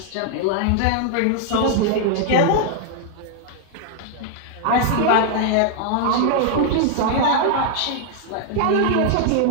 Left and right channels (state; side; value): different; both; correlation 0.00